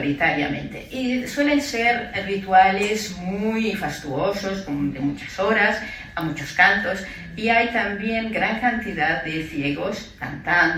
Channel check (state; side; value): identical; both; correlation 1.00